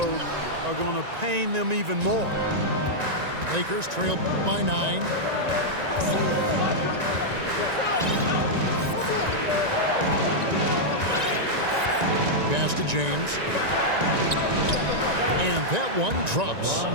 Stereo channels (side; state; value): left; late; 1.9 ms